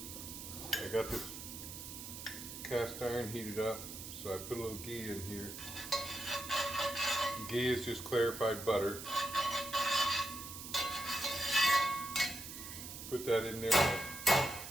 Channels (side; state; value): right; noise; hiss, 10 dB below the sound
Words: I got this cast iron heated up, so I put a little ghee in here. Ghee is just clarified butter. Put that in there.